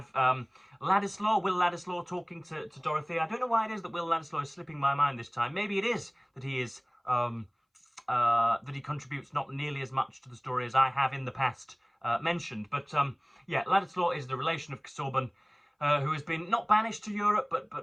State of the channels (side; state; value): both; identical; correlation 1.00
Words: Ladislaw, Will Ladislaw talking to Dorothea. I don't know why it is that Will Ladislaw is slipping my mind this time. Maybe it is that he is that he contributes not nearly as much to the story as I have in the past mentioned. But yeah, Ladislaw is the relation of Casaubon, who has been not banished to Europe, but